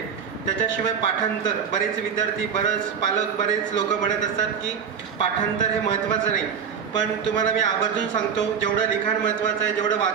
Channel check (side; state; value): left; quieter; 7.1 dB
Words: त्याच्याशिवाय पाठांतर, बरेच विद्यार्थी, बरेच पालक, बरेच लोक म्हणत असतात की पाठांतर हे महत्त्वाचं नाही, पण तुम्हाला मी आवर्जून सांगतो, जेवढं लिखाण महत्त्वाचं आहे, जेवढं